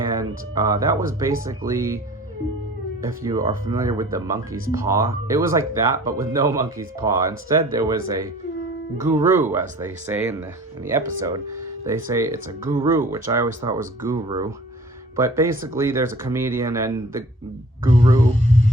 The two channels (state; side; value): normal; both; correlation 0.47